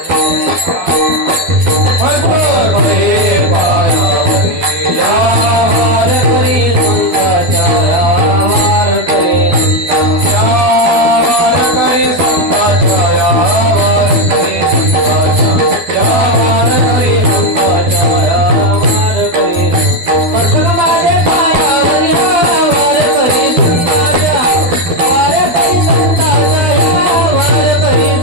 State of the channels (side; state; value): left; late; 12 ms